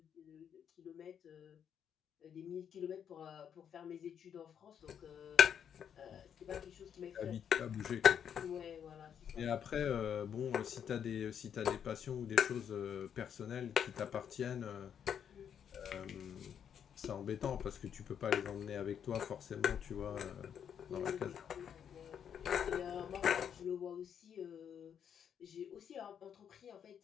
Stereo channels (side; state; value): right; quieter; 8.4 dB